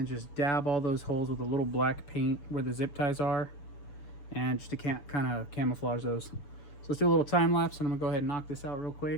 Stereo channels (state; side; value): late; right; 7.0 ms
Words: just dab all those holes with a little black paint where the zip ties are. And just to kind of camouflage those. So let's do a little time lapse, and I'm gonna go ahead and knock this out real